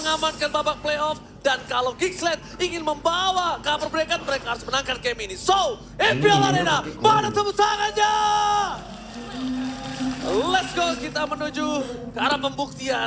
babak playoff. Dan kalau Geeksled ingin membawa cover mereka harus menangkan game ini. So, MPL Arena, mana tepuk tangannya? Let's go, kita menuju ke arah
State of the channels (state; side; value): identical; both; correlation 1.00